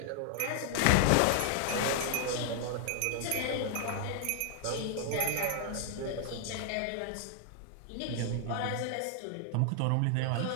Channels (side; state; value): both; different; correlation 0.00